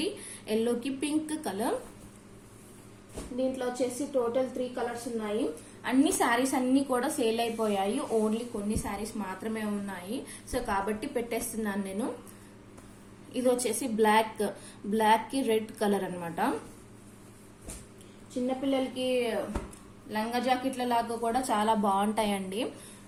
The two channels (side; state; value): both; identical; correlation 1.00